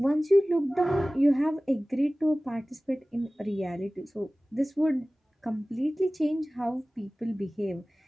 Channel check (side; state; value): both; normal; correlation 0.98